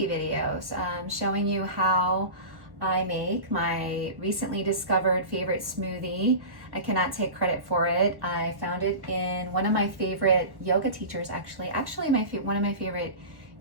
videos showing you how I make my recently discovered favorite smoothie. I cannot take credit for it. I found it in one of my favorite yoga teachers, actually one of my favorite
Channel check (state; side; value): late; left; 1.1 ms